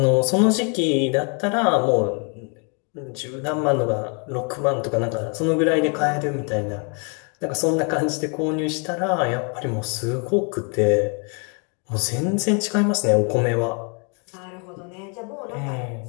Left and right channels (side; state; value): right; quieter; 37.0 dB